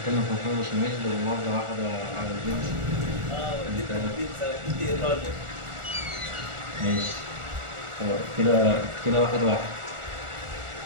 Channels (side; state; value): left; late; 1.4 ms